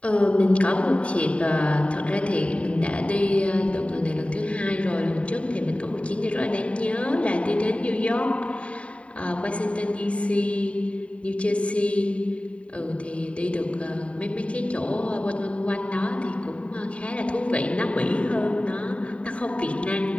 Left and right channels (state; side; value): late; right; 0.063 ms